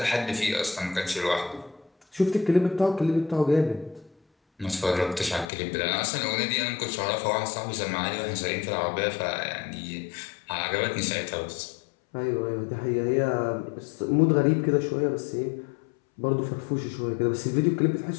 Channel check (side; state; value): right; drops out; at 5.5 s